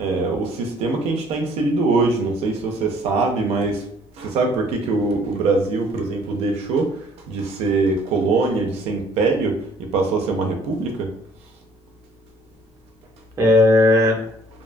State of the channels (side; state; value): both; normal; correlation 0.59